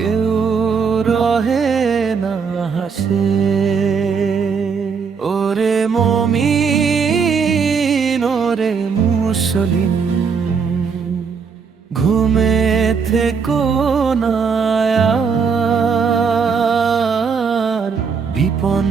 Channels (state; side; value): quieter; left; 5.8 dB